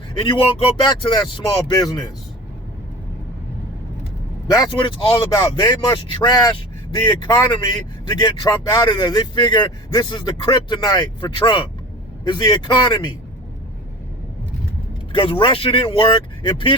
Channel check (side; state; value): both; normal; correlation 0.37